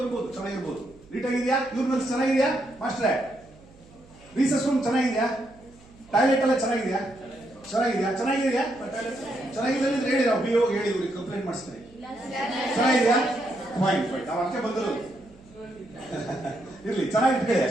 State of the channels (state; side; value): noise; right; hum, 25 dB below the sound